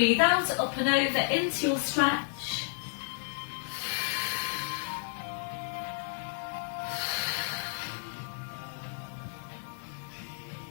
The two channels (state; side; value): silent; right; digital silence